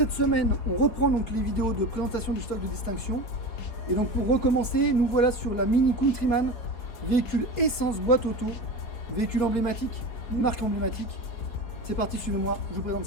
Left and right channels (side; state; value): right; late; 4.9 ms